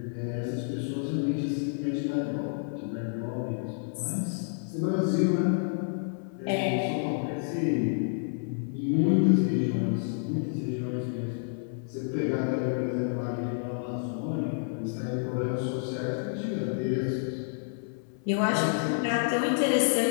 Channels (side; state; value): right; silent; 58 dB below the other